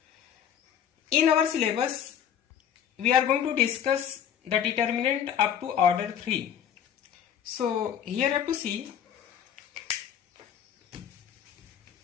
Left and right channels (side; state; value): right; quieter; 9.2 dB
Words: In our syllabus, we are going to discuss the determinant up to order 3. So here you have to see